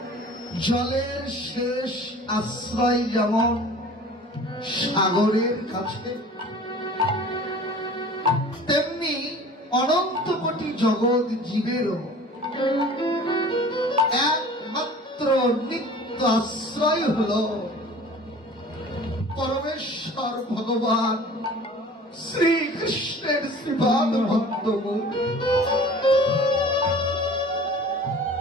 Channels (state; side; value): normal; both; correlation 0.44